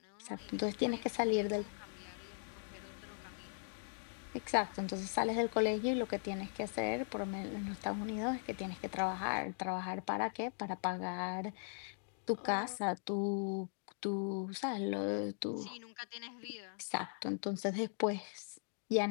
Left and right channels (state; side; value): silent; right; digital silence